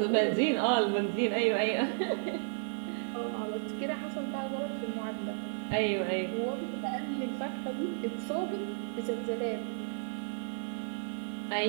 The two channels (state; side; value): silent; left; digital silence